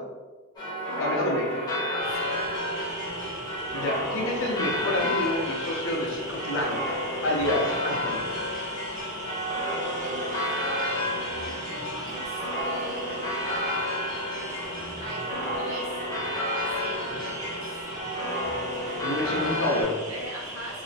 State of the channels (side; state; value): both; normal; correlation -0.02